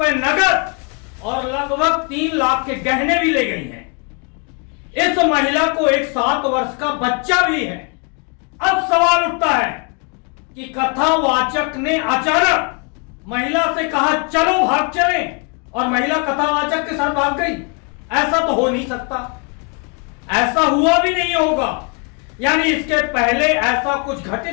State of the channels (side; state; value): right; quieter; 35.2 dB